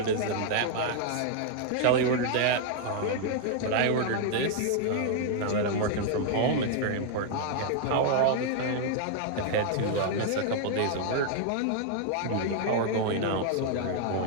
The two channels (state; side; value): different; both; correlation 0.00